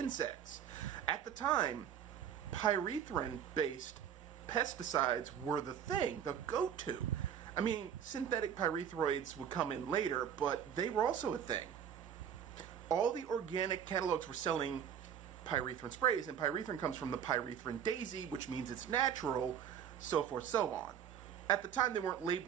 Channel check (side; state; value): left; quieter; 8.8 dB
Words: At the time, pyrethrin-based pesticides were the thing, the go-to. I mean, synthetic pyrethroids would come in later, but they were also a thing. All the organic catalogs were selling pyrethrin sprays, and pyrethrin comes from the pyrethrin daisy, which means it's natural, so forth, so on. At the time, they weren't